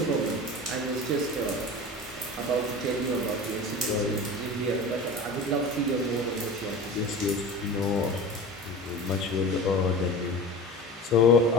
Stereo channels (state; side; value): normal; both; correlation 0.33